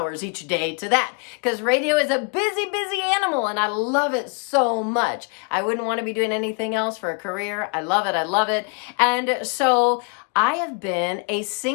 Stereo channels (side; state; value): right; quieter; 36.9 dB